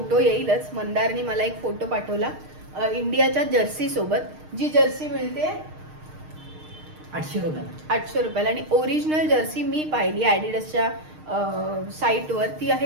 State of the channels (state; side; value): late; left; 6.5 ms